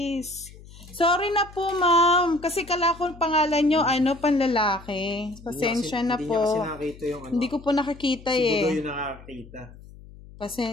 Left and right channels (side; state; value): left; noise; hum, 19 dB below the sound